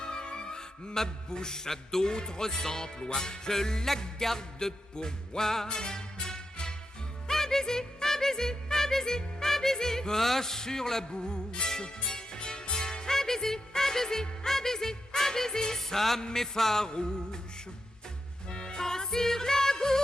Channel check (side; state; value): both; normal; correlation 0.87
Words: Ma bouche a d'autres emplois, je la garde pour moi. Un baiser, un baiser, un baiser, un baiser. Pas sur la bouche, Un baiser, un baiser, un baiser, un baiser. ça m'effarouche. Pas sur la